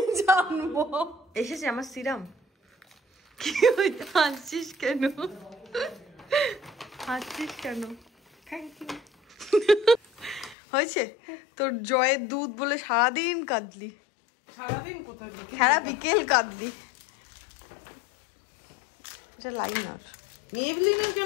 জানবো? এসেছে আমার সিরাম। কি হাসছিস কেন? হাসছিস কেন? হয়েছে তোর জয়ের দুধ বলে সারাদিন কাঁদলি? সারাদিন কোথায়? সারা বিকেল কাঁদলি। এটা লাইনার। মেবলিনের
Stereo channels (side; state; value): right; drops out; at 10.6 s